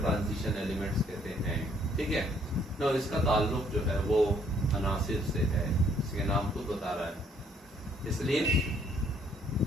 elements कहते हैं। ठीक है ना, इसका ताल्लुक जो है वो अनासिर से है, इसके नाम खुद बता रहा है। इसलिए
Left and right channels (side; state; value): both; normal; correlation 0.65